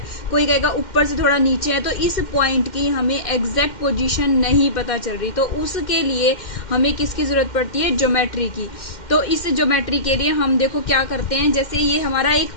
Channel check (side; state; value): right; late; 2.1 ms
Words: कोई कहेगा ऊपर से थोड़ा नीचे है। तो इस पॉइंट की हमें एग्जैक्ट पोजीशन नहीं पता चल रही, तो उसके लिए हमें किसकी जरूरत पड़ती है, ज्योमेट्री की। तो इस ज्योमेट्री के लिए हम देखो क्या करते हैं, जैसे ये हमारा एक